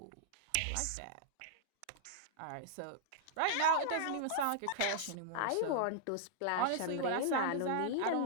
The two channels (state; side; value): different; both; correlation -0.01